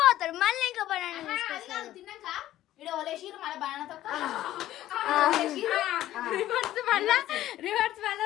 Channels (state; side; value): quieter; right; 13.8 dB